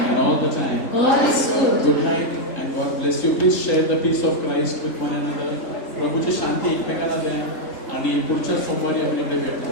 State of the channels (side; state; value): right; late; 3.8 ms